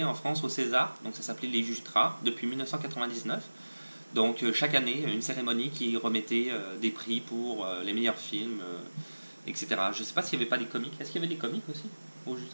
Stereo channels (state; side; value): inverted; both; correlation -1.00